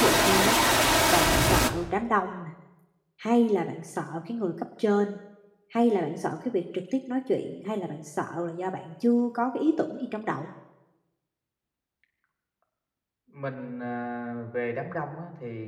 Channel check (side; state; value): both; identical; correlation 1.00